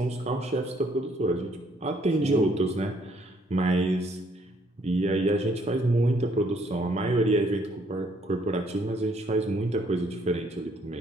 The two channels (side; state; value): both; normal; correlation 0.67